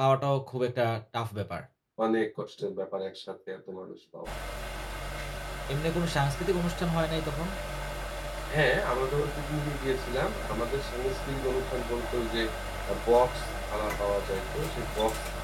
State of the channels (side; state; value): both; identical; correlation 1.00